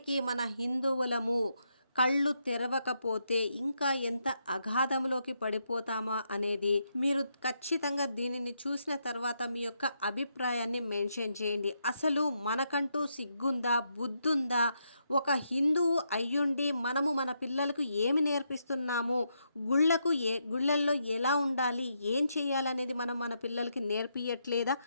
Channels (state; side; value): inverted; both; correlation -0.80